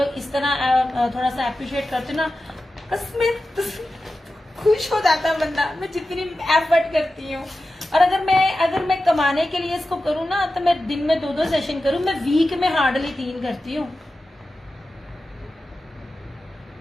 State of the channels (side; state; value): both; normal; correlation 0.93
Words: इस तरह थोड़ा सा अप्रिशिएट करते ना, कसमें खुश हो जाता बंदा। मैं जितनी एफर्ट करती हूँ, और अगर मैं कमाने के लिए इसको करूँ ना, तो मैं दिन में 2-2 सेशन करूँ, मैं वीक में हार्डली 3 करती हूँ।